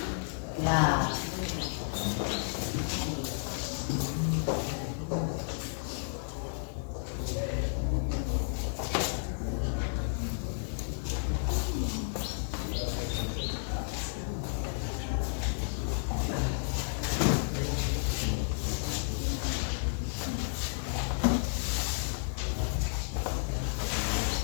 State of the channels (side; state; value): right; silent; digital silence